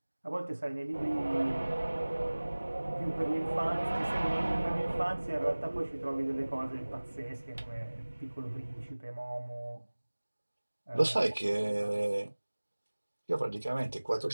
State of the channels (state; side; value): inverted; both; correlation -1.00